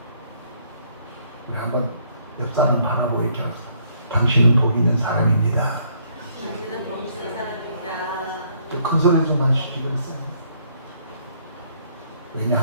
우리 한번 옆 사람 바라보고 이렇게 하세요. 당신은 복 있는 사람입니다. 당신은 복 있는 사람입니다. 큰 소리 좀 하시지 그랬어요.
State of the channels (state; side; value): inverted; both; correlation -0.67